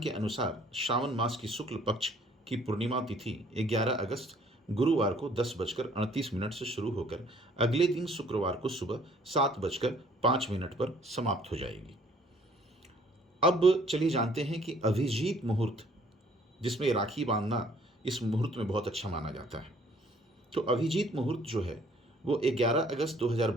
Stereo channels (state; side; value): normal; both; correlation 0.59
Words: के अनुसार श्रावण मास की शुक्ल पक्ष की पूर्णिमा तिथि 11 अगस्त गुरुवार को 10:38 से शुरू होकर अगले दिन शुक्रवार को सुबह 7:05 पर समाप्त हो जाएगी। अब चलिए जानते हैं कि अभिजीत मुहूर्त, जिसमें राखी बांधना इस मुहूर्त में बहुत अच्छा माना जाता है। तो अभिजीत मुहूर्त जो है वो 11 अगस्त